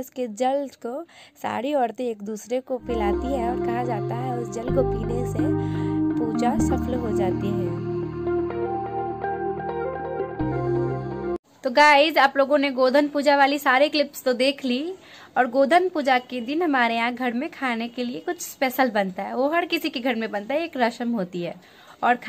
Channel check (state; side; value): identical; both; correlation 1.00